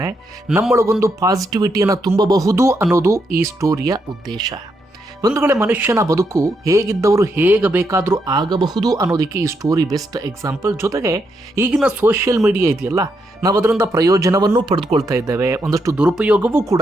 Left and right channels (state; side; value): normal; both; correlation 0.80